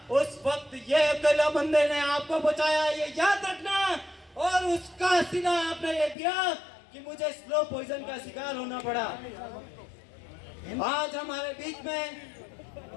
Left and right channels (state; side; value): drops out; right; at 6.2 s